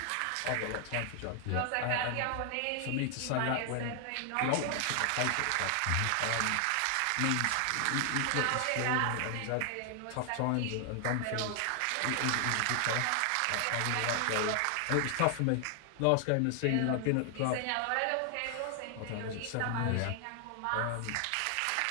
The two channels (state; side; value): different; both; correlation 0.00